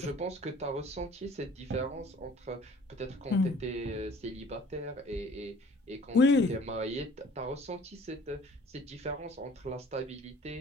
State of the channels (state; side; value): normal; both; correlation 0.52